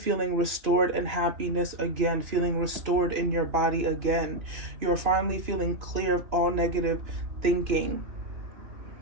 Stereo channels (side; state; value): left; late; 2.9 ms